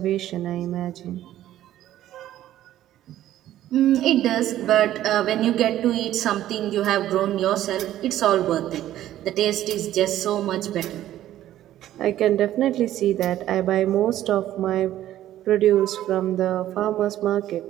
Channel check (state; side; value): quieter; left; 13.0 dB